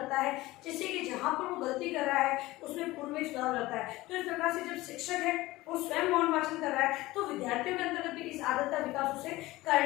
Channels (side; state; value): right; quieter; 18.7 dB